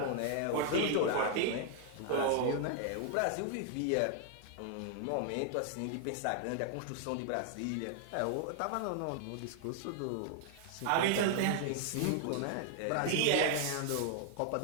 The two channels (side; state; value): both; different; correlation 0.00